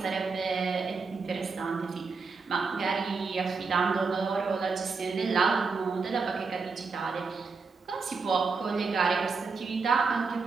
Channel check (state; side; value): quieter; left; 4.7 dB